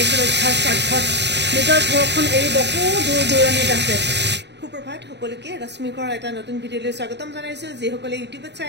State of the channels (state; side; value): late; left; 0.50 ms